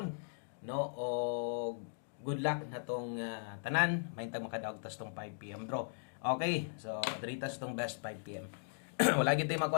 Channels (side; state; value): right; silent; digital silence